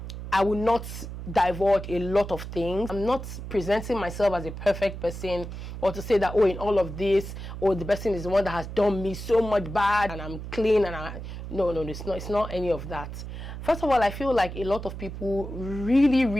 I will not divulge a lot of things. I'm not presenting myself as a perfect person, or to say that, oh, in all of this, oh, the person is the one that has done me so much bad and I'm clean, and no, it's not any of that. First of all, I feel like a lot of people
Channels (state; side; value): noise; right; hum, 9 dB below the sound